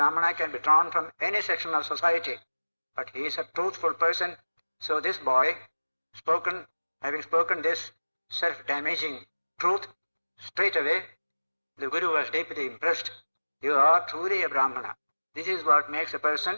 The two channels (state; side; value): inverted; both; correlation -1.00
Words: can be drawn from any section of society, but he is a truthful person. So this boy, having spoken this self-damaging truth, straight away the Guru was deeply impressed. You are truly a Brahmana. This is what makes a